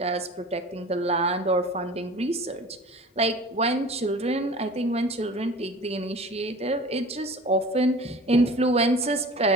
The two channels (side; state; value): both; normal; correlation 0.40